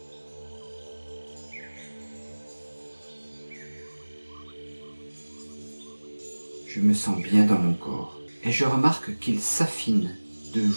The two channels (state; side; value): inverted; both; correlation -1.00